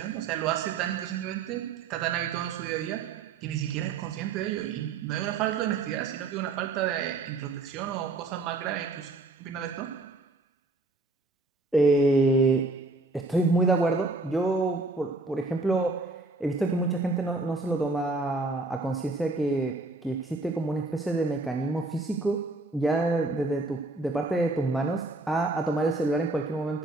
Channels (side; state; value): left; quieter; 3.3 dB